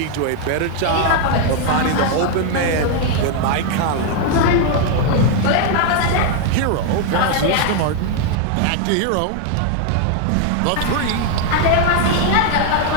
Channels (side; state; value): both; different; correlation 0.00